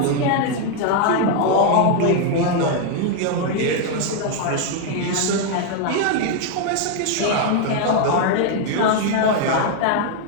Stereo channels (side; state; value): both; different; correlation 0.01